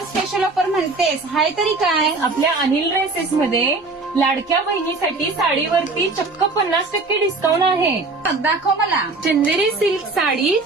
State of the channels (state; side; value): quieter; left; 3.6 dB